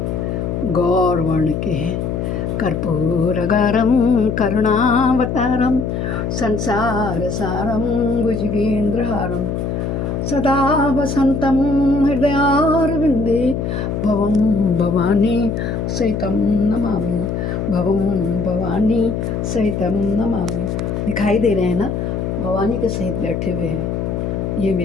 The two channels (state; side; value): noise; left; hum, 2 dB below the sound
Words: गौर वर्ण के हैं। कर्पूरगारम करुणावतारम संसार सारम भुजगेंद्रहारम सदा वसंतम हृदयारविंदे भवम भवानी सहितम नमामि, भवम भवानी सहितम नमामि। दिखाई दे रहे हैं ना, भवानी के सहित बैठे हुए हैं। ये